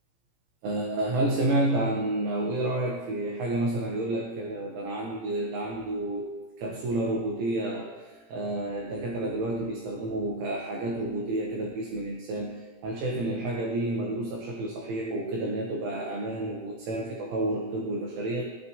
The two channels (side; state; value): left; late; 18 ms